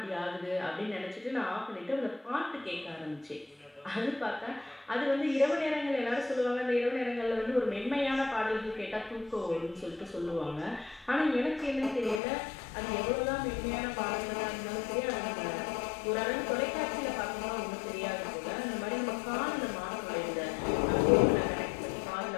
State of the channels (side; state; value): right; drops out; at 12.2 s